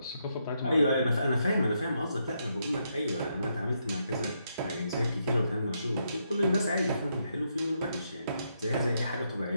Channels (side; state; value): both; inverted; correlation -0.79